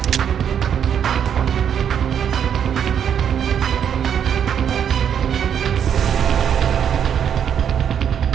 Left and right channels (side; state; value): left; quieter; 8.5 dB